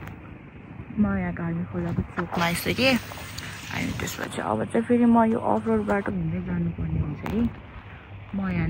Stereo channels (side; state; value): both; identical; correlation 1.00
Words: म यहाँ गाडी खोलाको चोकमा आइसकेँ। अनि त्यसपछि अब चाहिँ फेरि म यो अफ रोड बाटो हिँड्दै जानुपर्ने हुन्छ कि। म यहाँ